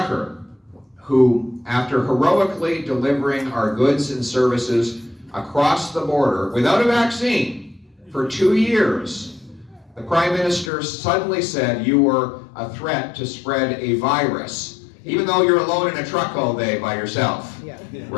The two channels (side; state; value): right; drops out; at 10.7 s